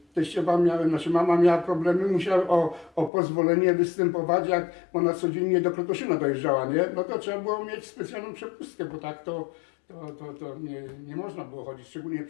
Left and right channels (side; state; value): right; drops out; at 3.1 s